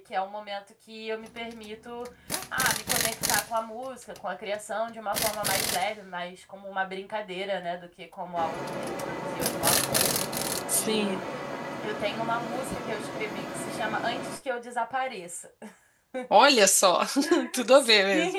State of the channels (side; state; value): both; identical; correlation 1.00